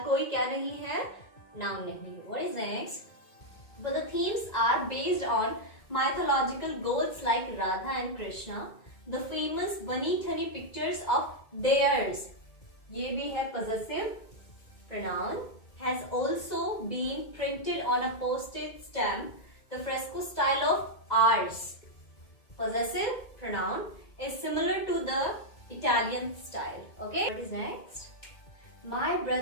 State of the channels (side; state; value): right; late; 2.2 ms